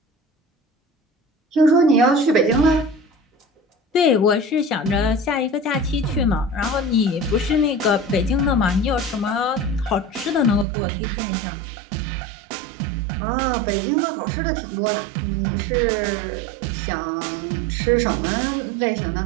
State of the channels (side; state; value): left; drops out; at 10.7 s